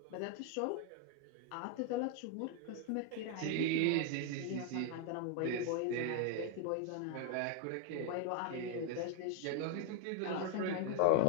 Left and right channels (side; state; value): both; different; correlation 0.01